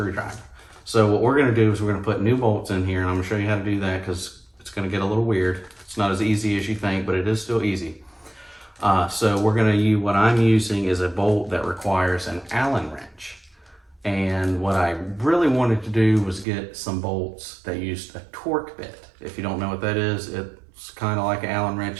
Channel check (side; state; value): left; drops out; at 16.4 s